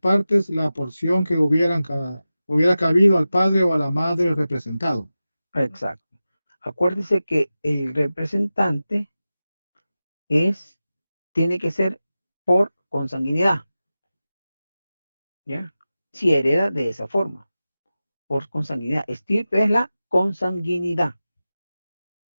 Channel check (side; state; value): both; inverted; correlation -0.95